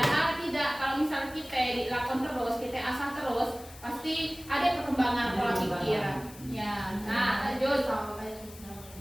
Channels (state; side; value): noise; left; hiss, 19 dB below the sound